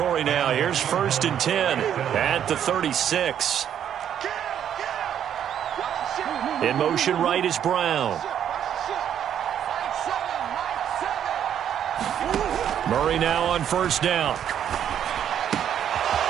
now. Here's first and 10 at the 36. In motion right is Brown. Murray now on first down.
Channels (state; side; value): quieter; left; 9.5 dB